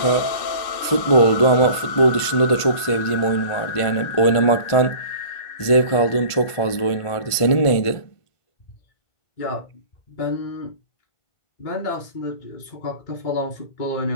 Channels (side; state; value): right; late; 1.5 ms